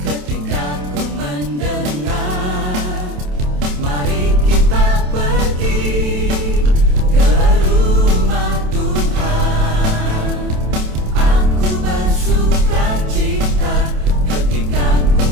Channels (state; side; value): late; left; 27 ms